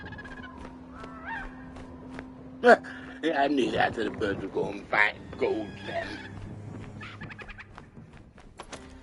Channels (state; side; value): identical; both; correlation 1.00